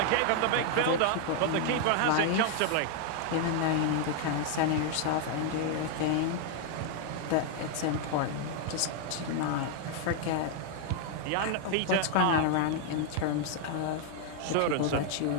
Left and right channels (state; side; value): different; both; correlation 0.00